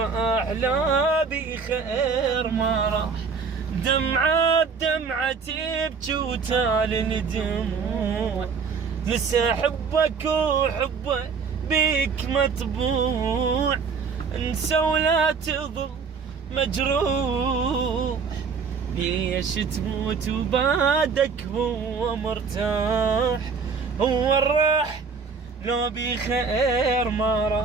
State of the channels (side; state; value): left; quieter; 5.4 dB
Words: لا بخير ما راح. دمعة بدمعة تبكي وتالي دموع، لسه حبك وحبه بيك مطبوع، انسى ولا تظل مجروح، ليش تموت وبعدك هو مرتاح، هو الراح لو بخير ما